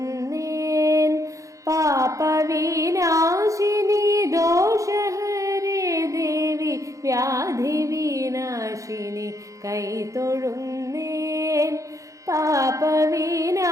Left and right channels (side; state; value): left; late; 0.16 ms